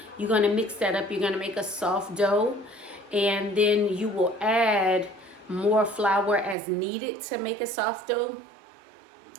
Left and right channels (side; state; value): left; drops out; at 6.6 s